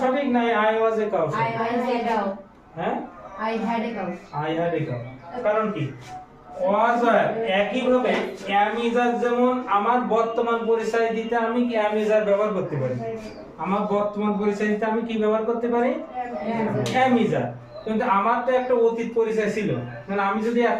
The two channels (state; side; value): identical; both; correlation 1.00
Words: সঠিক না আই ওয়াজ এ কাউ সঠিক? হ্যাঁ, আই হ্যাড এ কাউ। কারণ কি? ওয়াজ আর একই ভাবে am is are যেমন আমার বর্তমান পরিচয় দিতে আমি কি am is are ব্যবহার করতে পারি। আমার বর্তমান পরিচয় দিতে আমি কি ব্যবহার করতে পারি? am is are। কিন্তু আমার তো একটা অতীত পরিচয় ছিল, মানে আমি যদি